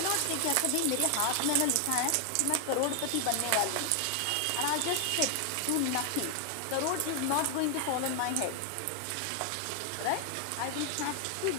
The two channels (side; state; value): both; different; correlation 0.00